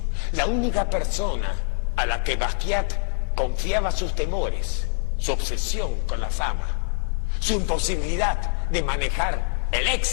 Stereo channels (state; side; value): silent; right; 59 dB below the other